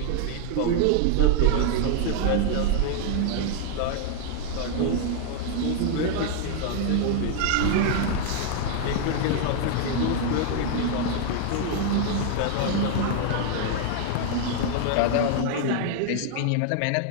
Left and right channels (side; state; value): both; different; correlation 0.00